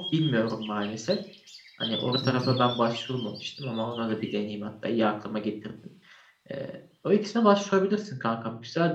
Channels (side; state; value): both; identical; correlation 1.00